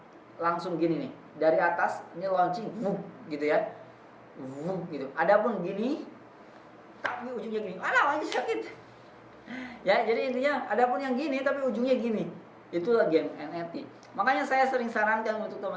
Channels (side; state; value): both; identical; correlation 1.00